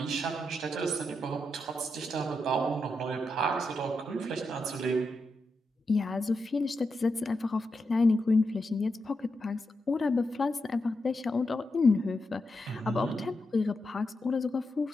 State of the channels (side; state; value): both; normal; correlation 0.86